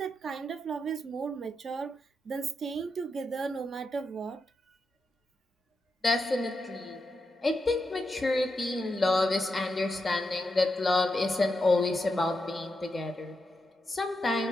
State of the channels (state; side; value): normal; both; correlation 0.86